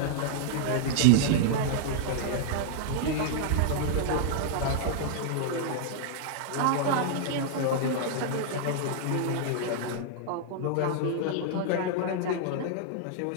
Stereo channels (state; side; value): different; both; correlation -0.01